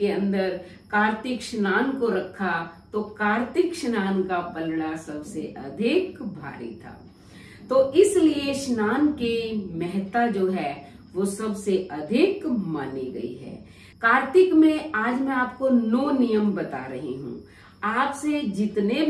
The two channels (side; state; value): both; identical; correlation 1.00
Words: अंदर कार्तिक स्नान को रखा, तो कार्तिक स्नान का पलड़ा सबसे अधिक भारी था। तो इसलिए स्नान की महत्ता जो है वो सबसे अधिक मानी गई है। कार्तिक में आज मैं आपको 9 नियम बता रही हूँ। आपसे जितने